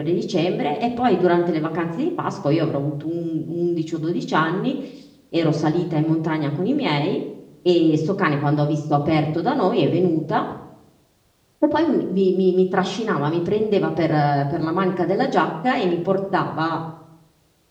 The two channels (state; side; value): identical; both; correlation 1.00